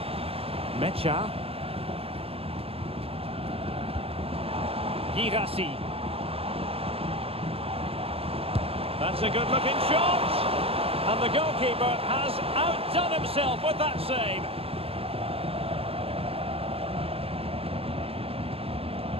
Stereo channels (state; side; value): late; left; 0.28 ms